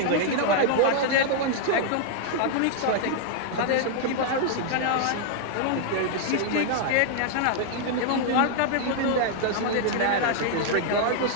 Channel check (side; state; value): both; different; correlation 0.00